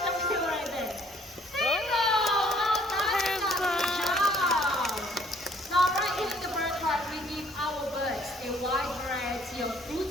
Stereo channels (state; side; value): normal; both; correlation 0.61